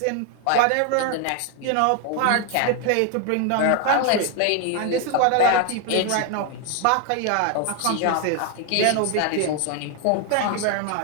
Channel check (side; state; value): both; different; correlation 0.01